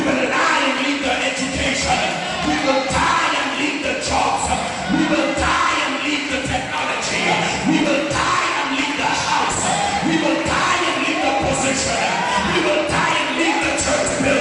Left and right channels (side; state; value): both; identical; correlation 1.00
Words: will die and leave the education. We will die and leave the jobs. We will die and leave the technology. We will die and leave the house. We will die and leave the position. We will die and leave the church